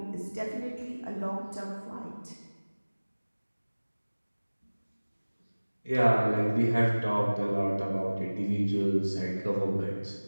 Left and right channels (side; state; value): both; inverted; correlation -1.00